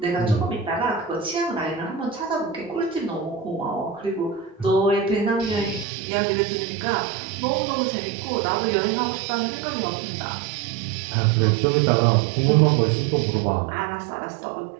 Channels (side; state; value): left; drops out; at 5.9 s